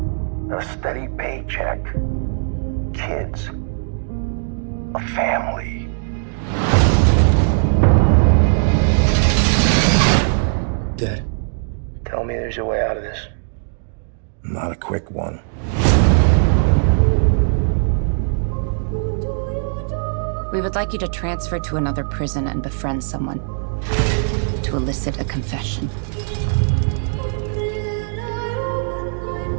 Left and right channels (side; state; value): left; silent; 66 dB below the other